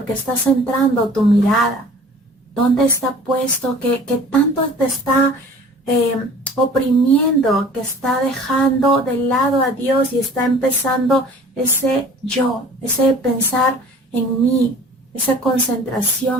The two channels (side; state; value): both; normal; correlation 0.47